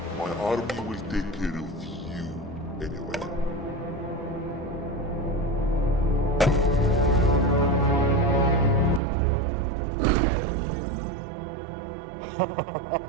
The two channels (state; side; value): drops out; left; at 9.0 s